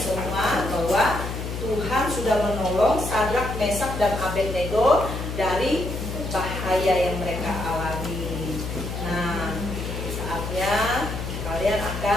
bahwa Tuhan sudah menolong Sadrak, Mesak, dan Abednego dari bahaya yang mereka alami. Nah, saatnya kalian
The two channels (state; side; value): noise; left; hum, 5 dB below the sound